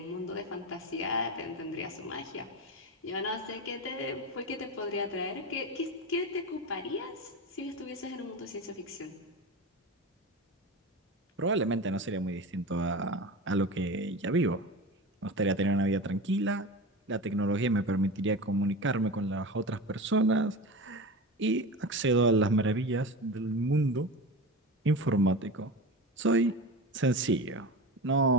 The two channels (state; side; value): normal; both; correlation 0.27